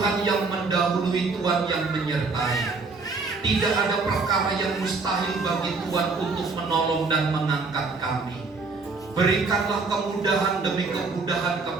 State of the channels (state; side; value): quieter; left; 4.1 dB